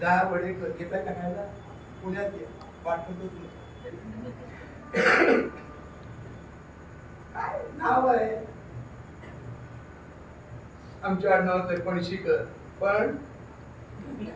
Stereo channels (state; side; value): identical; both; correlation 1.00